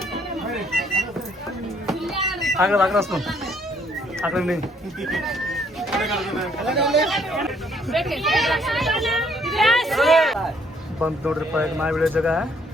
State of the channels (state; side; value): normal; both; correlation 0.66